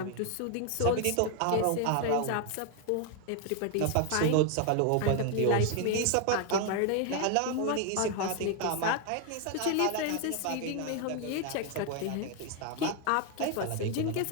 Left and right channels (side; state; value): both; different; correlation 0.01